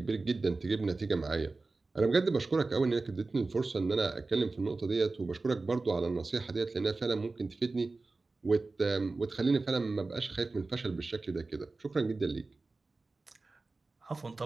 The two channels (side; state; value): left; quieter; 3.6 dB